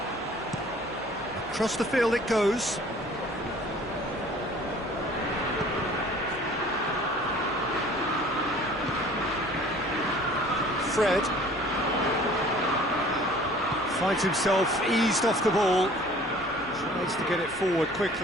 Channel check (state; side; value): noise; left; hum, 26 dB below the sound